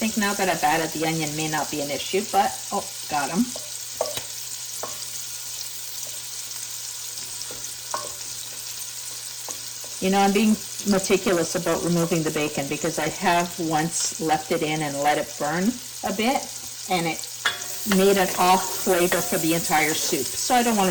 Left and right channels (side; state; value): both; identical; correlation 1.00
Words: think now that I've added the onion may not be an issue, but oh, got them. You know, I'm being meticulous about removing the bacon, because I have once left it in and let it burn a bit, and it made an off flavor for the entire soup. So I don't